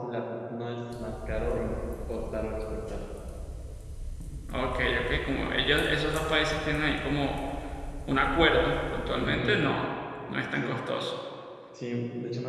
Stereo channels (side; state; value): both; identical; correlation 1.00